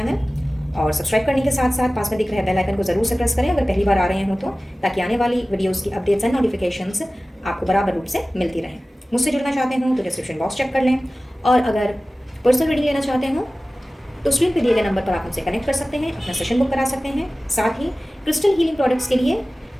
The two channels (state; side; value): normal; both; correlation 0.97